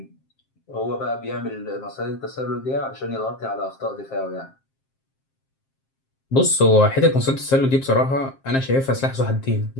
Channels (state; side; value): late; right; 7.5 ms